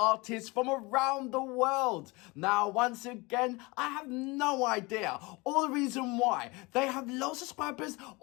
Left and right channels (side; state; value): right; quieter; 25.0 dB